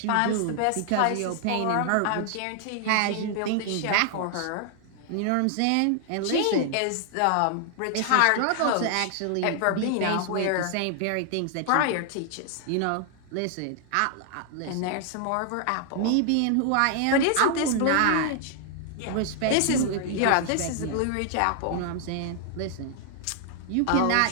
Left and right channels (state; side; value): different; both; correlation 0.00